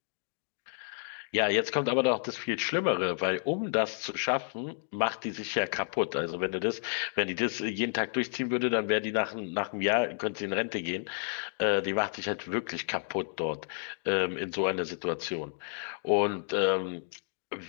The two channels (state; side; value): silent; right; digital silence